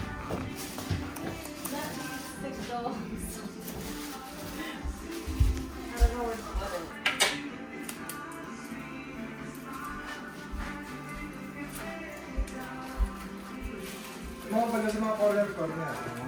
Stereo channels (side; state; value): both; identical; correlation 1.00